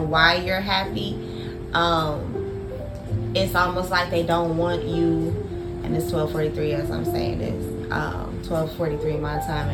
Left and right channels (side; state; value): both; identical; correlation 1.00